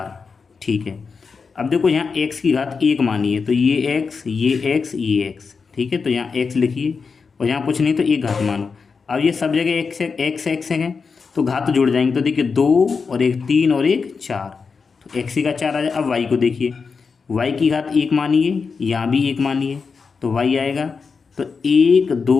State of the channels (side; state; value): right; quieter; 5.2 dB